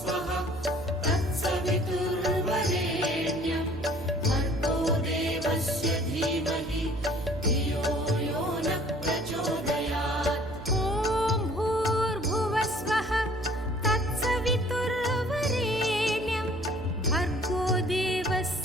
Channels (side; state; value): right; noise; hum, 13 dB below the sound